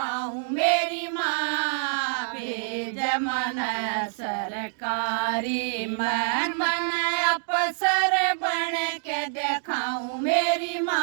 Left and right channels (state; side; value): silent; left; digital silence